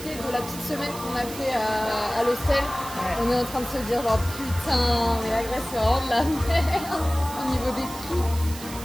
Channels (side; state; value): right; noise; hiss, 13 dB below the sound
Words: de la petite semaine qu'on a fait à l'hostel. On est en train de se dire genre putain, mais la Grèce c'est vraiment de la merde au niveau des prix.